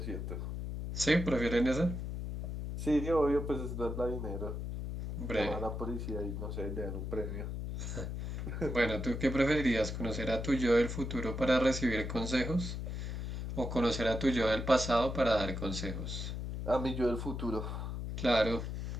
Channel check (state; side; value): noise; left; hum, 4 dB below the sound